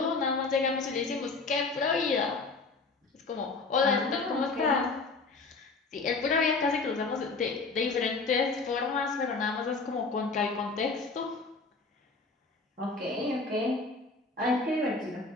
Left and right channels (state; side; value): quieter; right; 3.9 dB